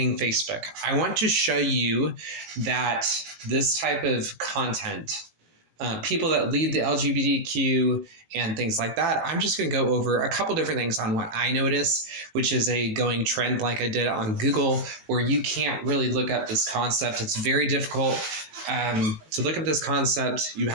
Facebook? I want to show you that this type of content, people that lead the LGBTQ and things like that, I'm just going to go over a couple different things on what I notice, which is a going trend like I did on Google, where you can't really look up this concept. It's very difficult to look up this concept. You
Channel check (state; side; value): late; left; 19 ms